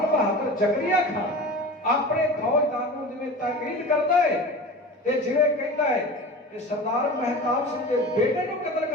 ਬਹਾਦਰ ਜ਼ਕਰੀਆ ਖਾਨ ਆਪਣੇ ਫੌਜਦਾਰ ਨੂੰ ਜਿਵੇਂ ਤਾਕੀਦ ਕਰਦਾ ਹੈ ਤੇ ਜਿਵੇਂ ਕਹਿੰਦਾ ਹੈ ਕਿ ਸਰਦਾਰ ਮਹਿਤਾਬ ਸਿੰਘ ਦੇ ਬੇਟੇ ਨੂੰ ਕਤਲ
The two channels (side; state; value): both; normal; correlation 0.34